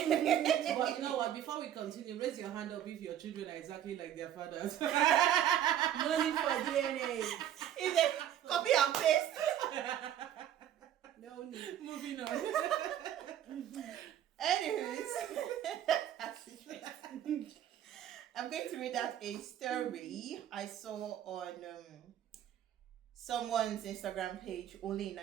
know what? Before we continue, raise your hand up if your children are exactly like their fathers. no need for DNA. Is it copy and paste? No need. Moving on. Anyways, I'm going to read out a story I saw on someone's Instagram page, only in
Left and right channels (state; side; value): quieter; left; 10.8 dB